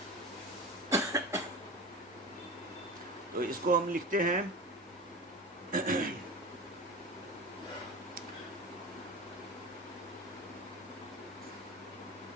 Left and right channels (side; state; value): both; normal; correlation 0.30